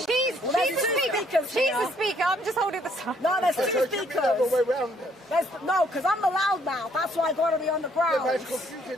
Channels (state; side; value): normal; both; correlation 0.66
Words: She's the speaker. I'm just holding the sign. No, there's two speakers. No, because I'm the loudmouth. That's why I got to be on the ground. Yeah, but it's